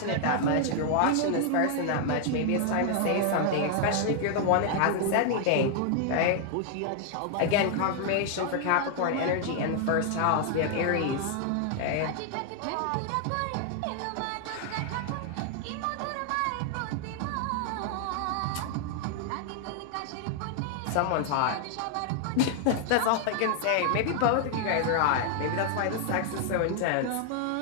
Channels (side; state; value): both; different; correlation 0.00